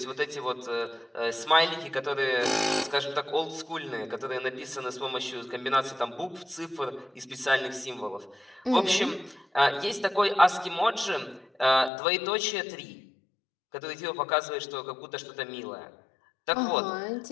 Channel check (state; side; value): drops out; right; at 11.9 s